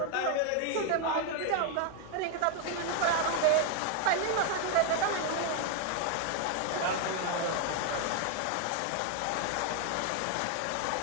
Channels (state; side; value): different; both; correlation 0.01